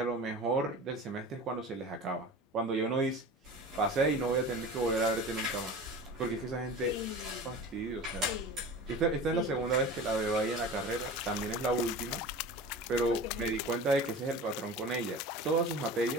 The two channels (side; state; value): both; normal; correlation 0.35